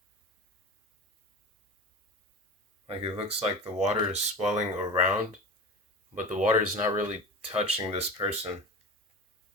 Like it looks like the water is swelling around, but the water is not really touching this person.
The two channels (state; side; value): normal; both; correlation 0.31